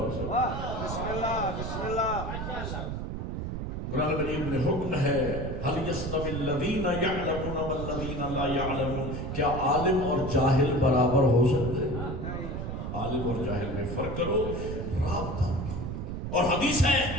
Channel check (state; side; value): noise; right; rumble, 4 dB below the sound